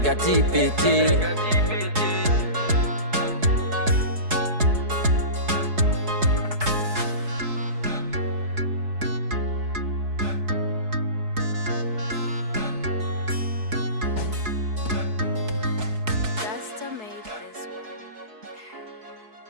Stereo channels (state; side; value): late; left; 4.7 ms